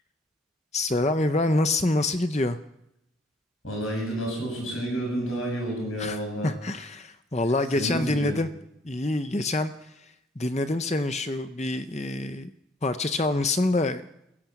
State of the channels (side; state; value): both; normal; correlation 0.62